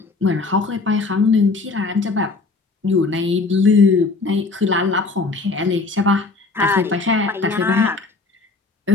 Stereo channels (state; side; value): quieter; right; 3.9 dB